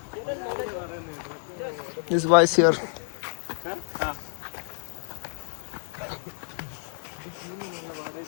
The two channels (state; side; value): silent; right; digital silence